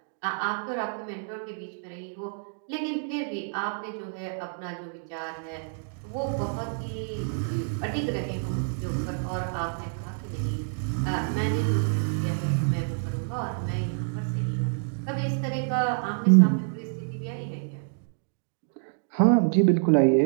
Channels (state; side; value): silent; left; digital silence